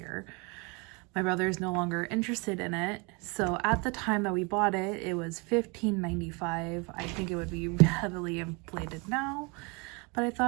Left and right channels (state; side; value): quieter; left; 29.8 dB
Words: My brother is no longer interested in it. So at the time that we bought it, it was $15.95. I think it would be heavily inflated now, but I